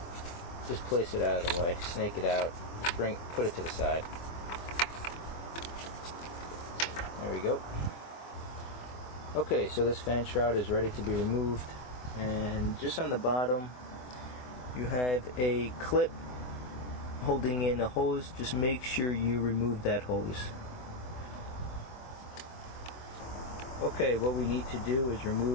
Just place it out of the way. Snake it out. Put it to the side. There we go. Okay, so this fan shroud is ready to be removed, and just on the bottom you have a clip holding in the hose. Just make sure you remove that hose. Okay, what we need to do is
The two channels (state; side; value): late; right; 24 ms